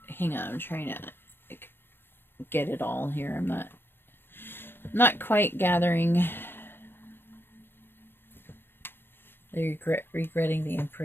Hang on, I'm trying to like, get it all here. I'm not quite gathering. They're regretting the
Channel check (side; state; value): right; late; 0.10 ms